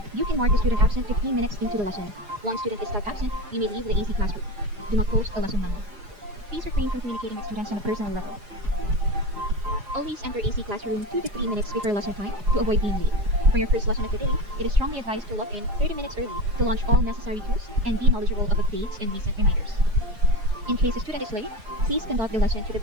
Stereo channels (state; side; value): late; left; 4.9 ms